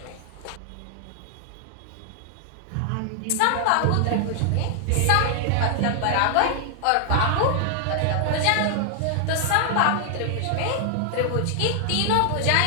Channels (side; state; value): both; different; correlation 0.00